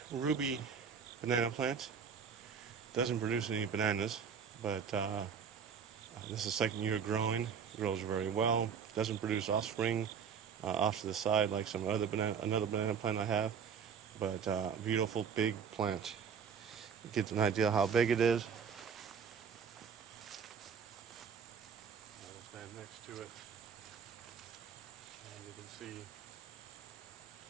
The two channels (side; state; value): left; quieter; 6.8 dB